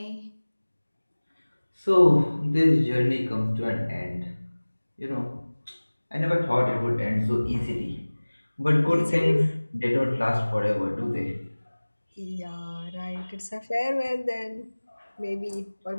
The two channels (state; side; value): inverted; both; correlation -1.00